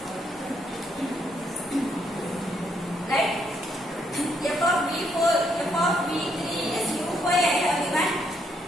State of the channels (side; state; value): both; normal; correlation 0.74